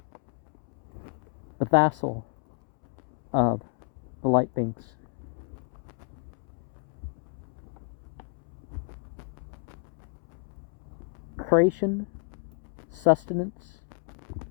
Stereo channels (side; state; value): right; quieter; 38.2 dB